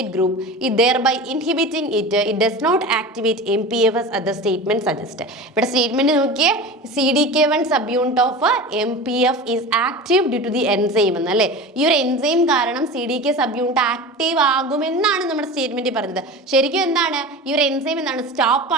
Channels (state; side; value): normal; both; correlation 0.32